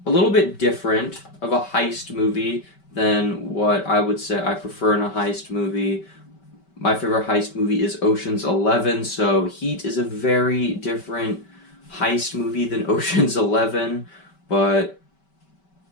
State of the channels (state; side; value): late; right; 5.2 ms